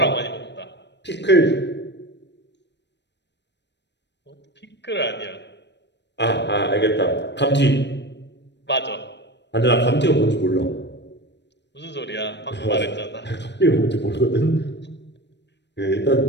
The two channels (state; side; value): late; right; 0.51 ms